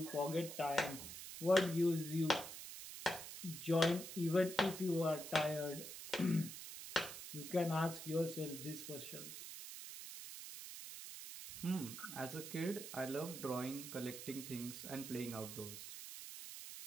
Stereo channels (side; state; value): right; noise; hiss, 9 dB below the sound